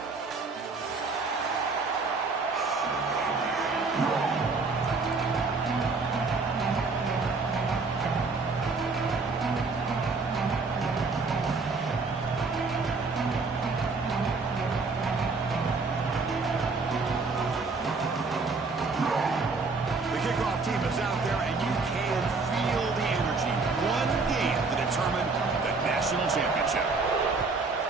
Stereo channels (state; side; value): quieter; left; 4.1 dB